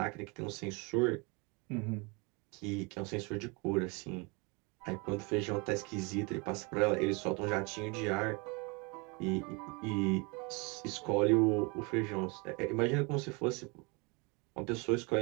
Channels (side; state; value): left; quieter; 29.7 dB